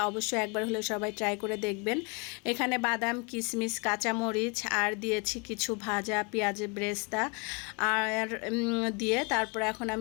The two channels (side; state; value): right; quieter; 31.6 dB